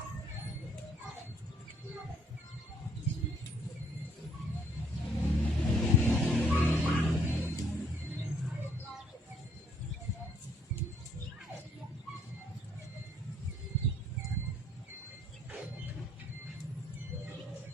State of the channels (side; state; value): both; normal; correlation 0.65